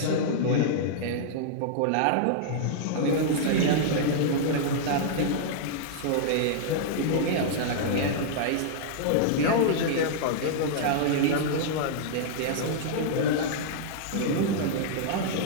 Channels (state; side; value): different; both; correlation -0.01